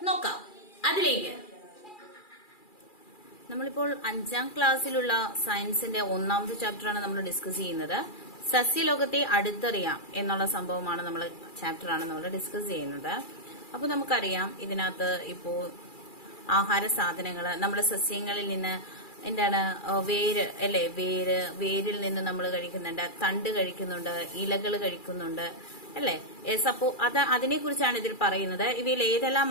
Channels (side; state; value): right; late; 2.4 ms